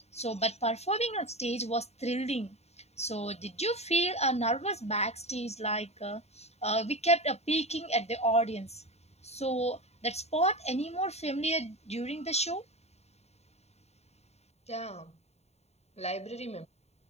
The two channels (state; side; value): late; right; 0.31 ms